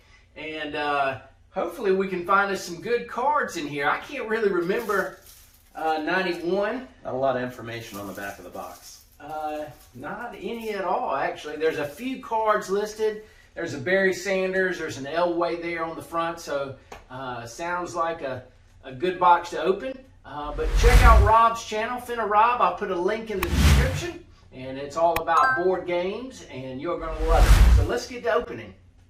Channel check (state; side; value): identical; both; correlation 1.00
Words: and hopefully we can find us some good cards in here. I can't really remember 91. Not a lot of information on the back of the box. Not any at all, actually. There's a few cards listed. There's a Barry Sanders. There's an Elway there on the front. So sounds like a good box to open. But check out Rob's channel, Fenirob. I'll put a link in the description. And it's all about board games, and you're going to love it. So let's get to opening.